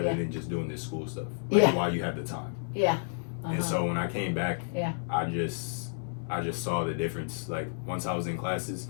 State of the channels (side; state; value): right; silent; 57 dB below the other